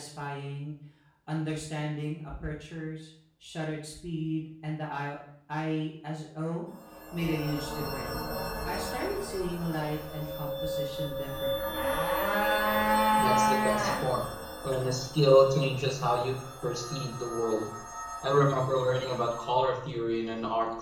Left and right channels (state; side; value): identical; both; correlation 1.00